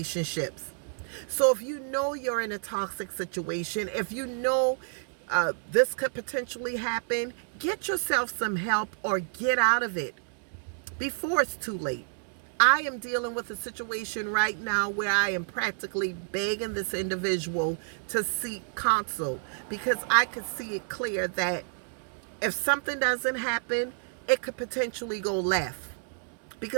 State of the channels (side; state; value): left; silent; digital silence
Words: So if you know you're in a toxic situation, if you know this could potentially happen, get yourself some help or get out of it before it's too late. I am dealing with a situation right now where I am practically begging this individual to seek counsel, because I could see it clear that if something doesn't happen, it could potentially go left,